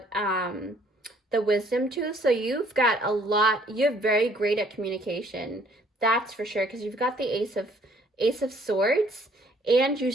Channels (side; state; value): both; normal; correlation 0.61